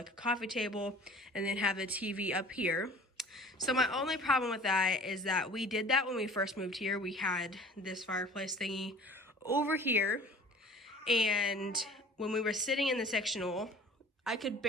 a coffee table and then have the TV up here. So my only problem with that is that we did that when we first moved here. We had this fireplace thingy over here, and when we were sitting in the sectional, I could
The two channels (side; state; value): both; normal; correlation 0.46